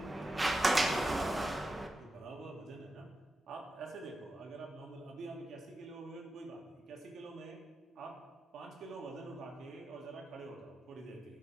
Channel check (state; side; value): normal; both; correlation 0.90